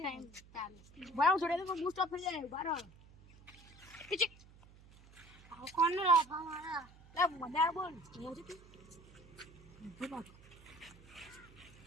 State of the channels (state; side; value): noise; right; hum, 23 dB below the sound